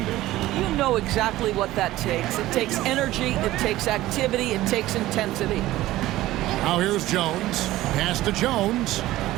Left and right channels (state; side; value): quieter; left; 16.1 dB